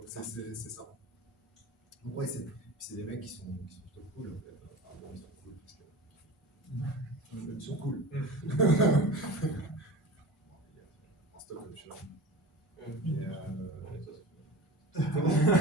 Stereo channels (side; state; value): both; normal; correlation 0.34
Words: c'est ça. Donc ouais, c'est des mecs qui sont plutôt cool en fait. Enfin, bon, ils sont cool parce que ils sont cool. En stock option.